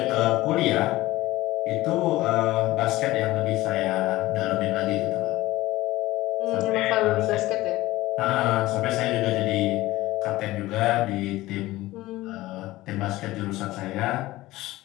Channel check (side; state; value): right; quieter; 17.7 dB